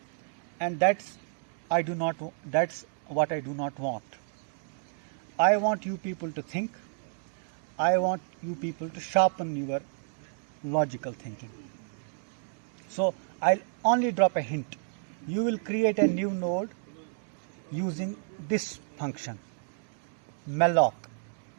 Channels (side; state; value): left; silent; 57 dB below the other